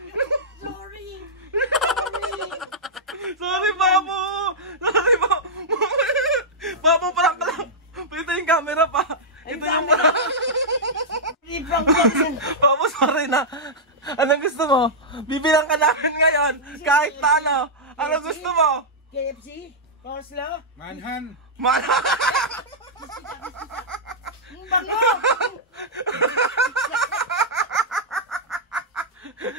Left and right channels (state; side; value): normal; both; correlation -0.09